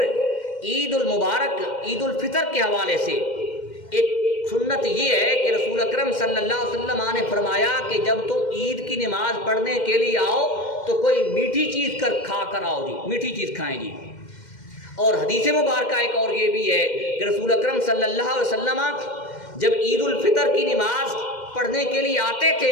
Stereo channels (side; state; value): right; late; 2.1 ms